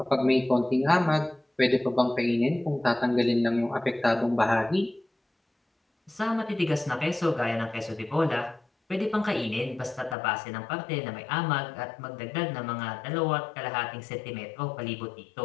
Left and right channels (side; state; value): right; drops out; at 10.2 s